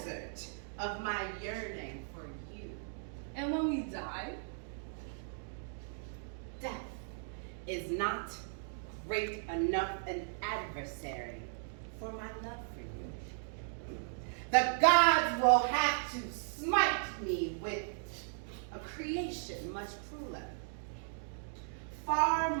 of my yearning for you. And when we die? Death is not great enough an adversary for my love for you. The gods will have to smite me with a creation much crueler, far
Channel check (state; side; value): silent; left; digital silence